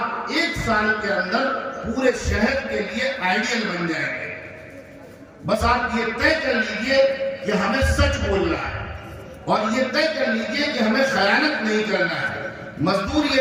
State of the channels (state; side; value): identical; both; correlation 1.00